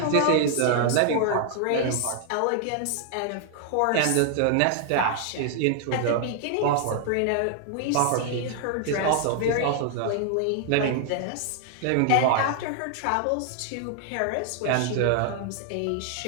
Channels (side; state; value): both; different; correlation 0.00